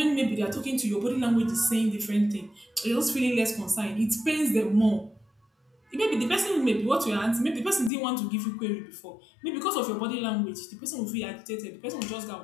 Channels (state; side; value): drops out; right; at 7.9 s